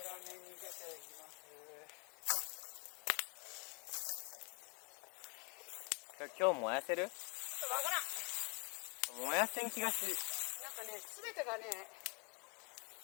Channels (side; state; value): right; quieter; 34.2 dB